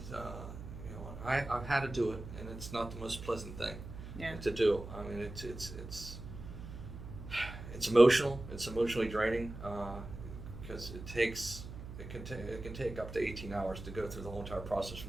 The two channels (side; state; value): right; noise; hum, 11 dB below the sound